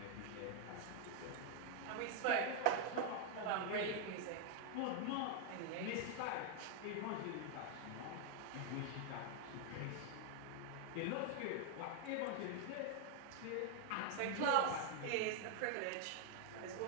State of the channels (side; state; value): both; different; correlation 0.00